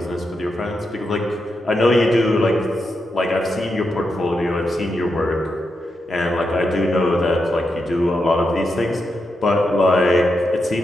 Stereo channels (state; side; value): normal; both; correlation 0.85